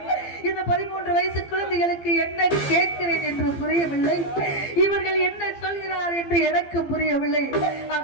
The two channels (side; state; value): right; late; 15 ms